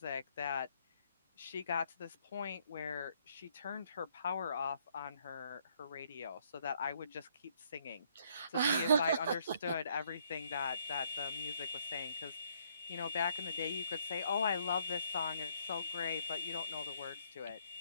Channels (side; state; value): both; inverted; correlation -0.69